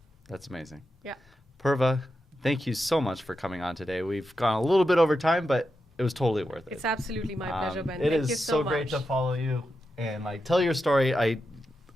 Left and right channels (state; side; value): normal; both; correlation 0.88